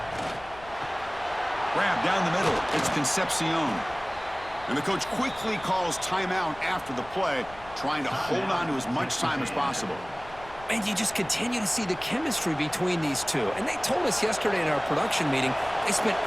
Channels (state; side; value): noise; left; rumble, 20 dB below the sound